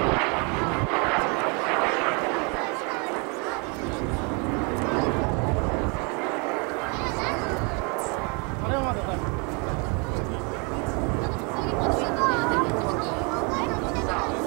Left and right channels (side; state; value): left; quieter; 32.6 dB